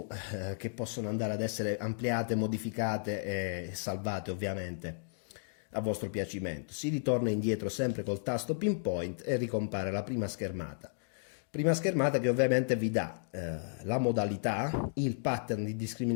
che possono andare ad essere ampliate, modificate e salvate ovviamente a vostro piacimento. Si ritorna indietro sempre col tasto pinpoint e ricompare la prima schermata. Prima schermata che ovviamente vi dà la modalità, il pattern di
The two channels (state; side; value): silent; right; digital silence